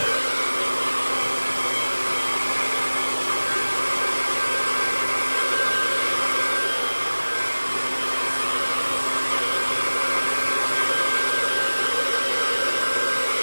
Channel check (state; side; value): inverted; both; correlation -1.00